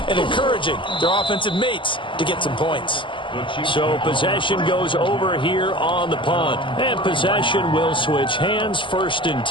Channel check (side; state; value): right; late; 0.24 ms